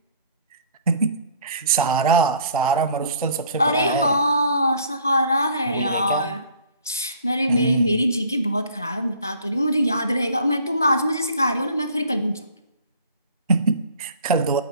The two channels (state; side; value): inverted; both; correlation -0.54